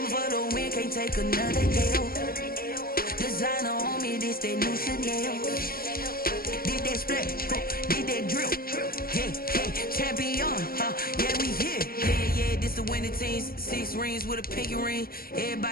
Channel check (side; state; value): right; late; 0.43 ms